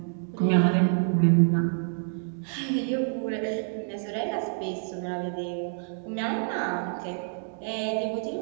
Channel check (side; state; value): left; silent; digital silence